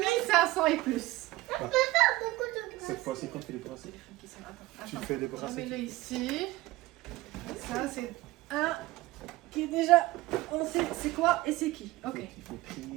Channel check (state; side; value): quieter; left; 18.4 dB